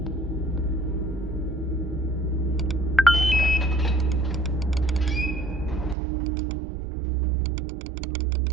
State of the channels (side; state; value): left; drops out; at 6.0 s